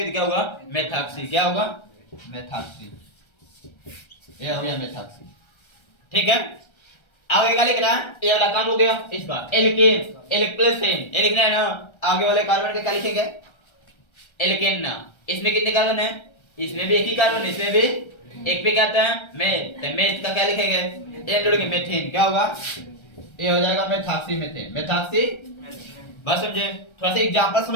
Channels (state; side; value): late; right; 1.3 ms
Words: तो क्या होगा, मेथॉक्सी, क्या होगा, मेथॉक्सी, ये हो गया मेथॉक्सी, ठीक है। आगे क्या लिखना है, ये वाला काम हो गया इसका, एल्केन, एल्केन, ये लिखना है ना। आगे वाले कार्बन का क्या लिखेंगे, एल्केन ना, इसमें कितने कार्बन है, इसमें भी एक ही कार्बन, इसमें भी एक पे क्या आता है, मेथ, तो मेथ का क्या लिखेंगे, एन जोड़ेंगे, मेथेन, क्या होगा, ये हो जाएगा मेथॉक्सी मेथेन, मेथॉक्सी। बस समझे, थोड़ा सा एग्जांपल